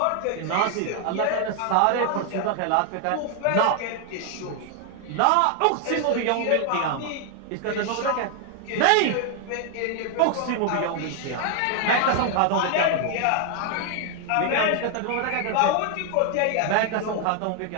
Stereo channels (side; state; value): both; different; correlation 0.00